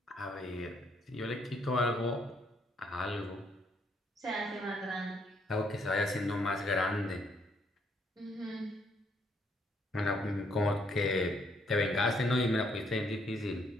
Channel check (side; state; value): both; normal; correlation 0.70